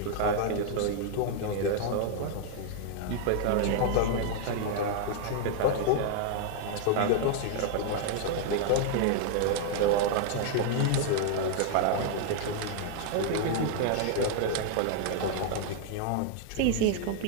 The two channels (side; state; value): both; different; correlation 0.00